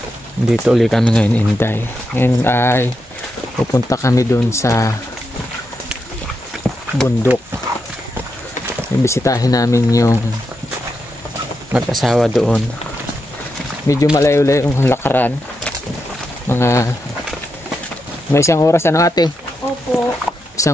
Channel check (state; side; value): normal; both; correlation 0.85